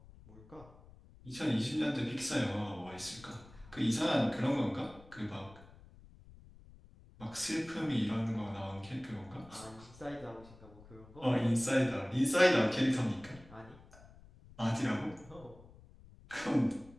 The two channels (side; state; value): left; noise; rumble, 22 dB below the sound